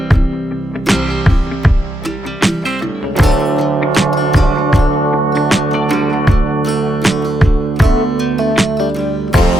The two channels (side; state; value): both; normal; correlation 0.81